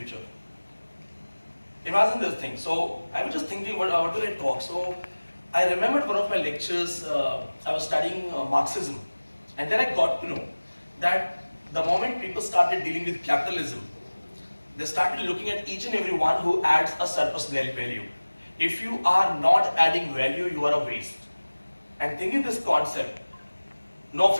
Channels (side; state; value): both; inverted; correlation -1.00